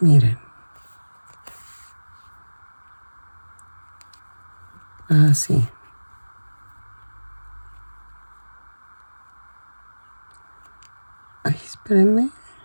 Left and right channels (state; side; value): inverted; both; correlation -1.00